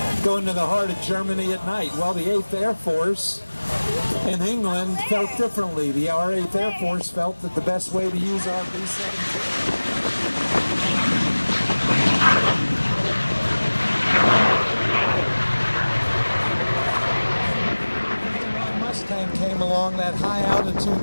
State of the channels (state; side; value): inverted; both; correlation -1.00